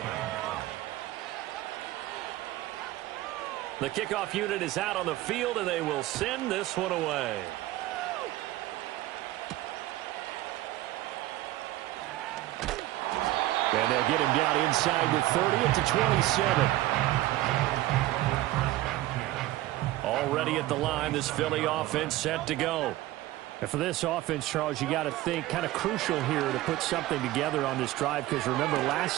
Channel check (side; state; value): left; quieter; 16.4 dB